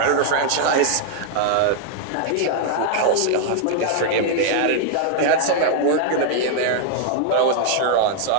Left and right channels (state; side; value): different; both; correlation 0.00